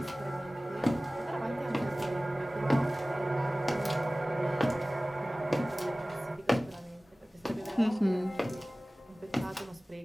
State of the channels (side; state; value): both; normal; correlation 0.98